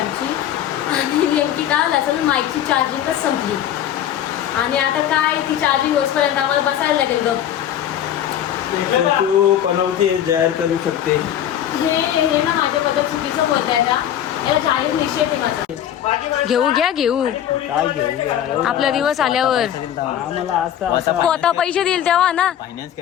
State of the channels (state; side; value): quieter; right; 10.7 dB